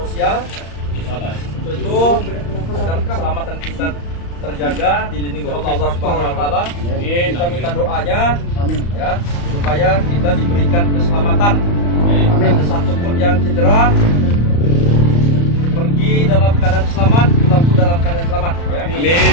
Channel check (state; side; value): late; right; 35 ms